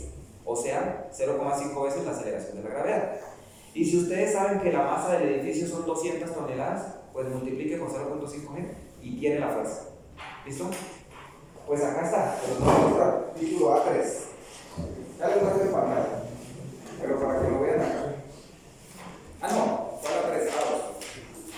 o sea, 0,5 veces la aceleración de la gravedad. Y si ustedes saben que la masa del edificio son 200 toneladas, pues multiplique con 0,5 G y tiene la fuerza. ¿Listo? Pues acá está, pero no voy a mostrar. Título A3. Ya les muestro en pantalla, pero para que lo vean acá. No, fue A3, A2.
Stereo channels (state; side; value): identical; both; correlation 1.00